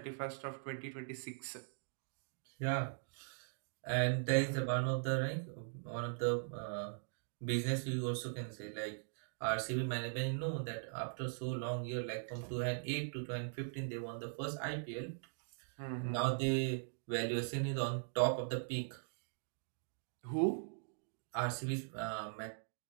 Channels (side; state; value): left; silent; digital silence